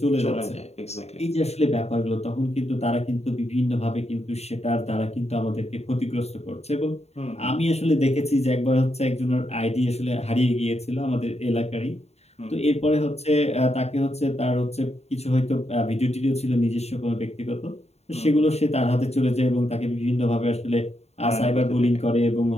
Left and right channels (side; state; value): right; late; 0.31 ms